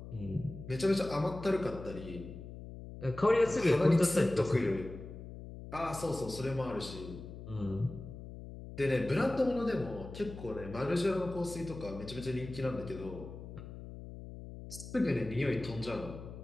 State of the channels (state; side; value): noise; left; hum, 12 dB below the sound